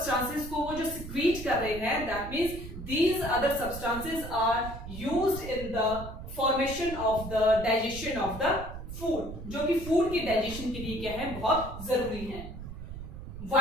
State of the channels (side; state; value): right; noise; rumble, 10 dB below the sound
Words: को वो जो secrete कर रहे हैं, that means these other substances are used in the formation of the digestion of the food, जो कि फूड की डाइजेशन के लिए क्या है, बहुत जरूरी है.